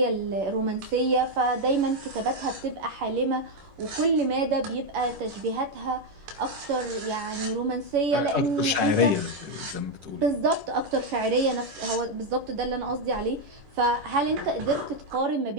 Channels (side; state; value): left; late; 10 ms